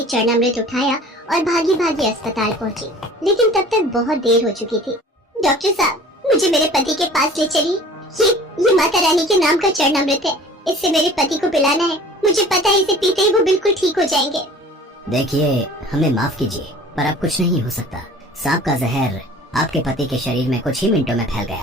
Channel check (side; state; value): both; normal; correlation 0.46